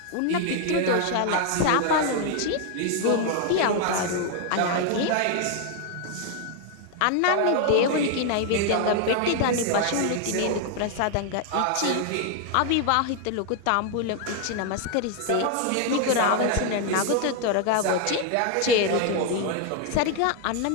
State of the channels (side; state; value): both; different; correlation 0.00